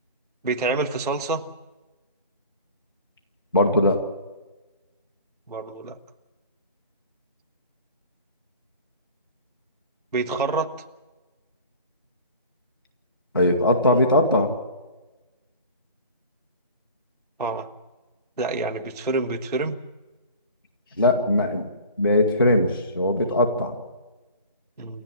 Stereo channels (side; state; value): both; inverted; correlation -0.40